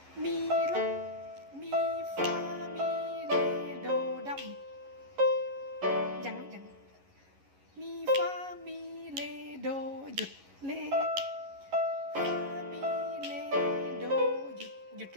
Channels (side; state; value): left; late; 11 ms